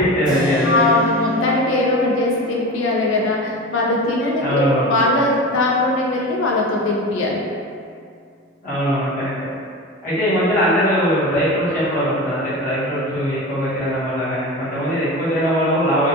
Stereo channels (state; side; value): normal; both; correlation 0.28